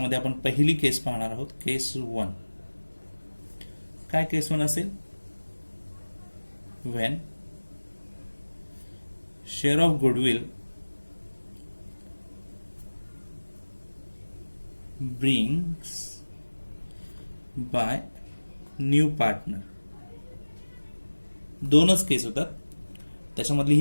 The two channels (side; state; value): both; inverted; correlation -1.00